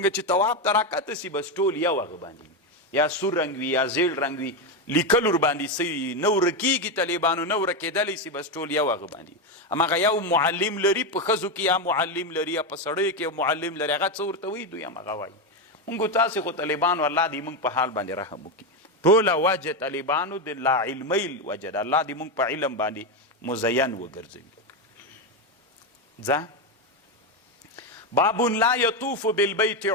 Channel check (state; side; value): normal; both; correlation 0.10